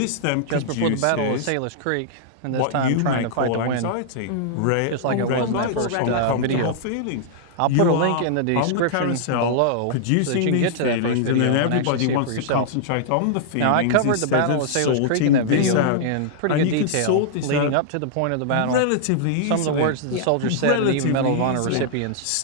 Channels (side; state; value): both; different; correlation -0.01